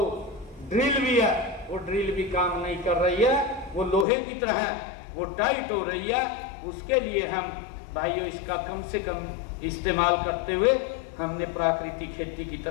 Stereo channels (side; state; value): right; drops out; at 4.0 s